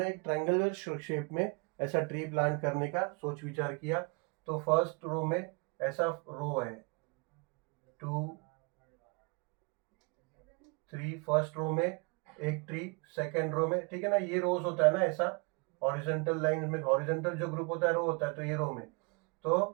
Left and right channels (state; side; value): quieter; left; 32.0 dB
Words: एक ट्रायंगुलर शेप में ऐसा ट्री प्लांट करने का सोच विचार किया। तो फर्स्ट रो में ऐसा रो है 2 3, फर्स्ट रो में एक ट्री, सेकेंड रो में, ठीक है ना, ये रोज होता है ना ऐसा, हॉरिजॉन्टल लाइन में हॉरिजॉन्टल जो ग्रुप होता है रो होता है, तो ये रो में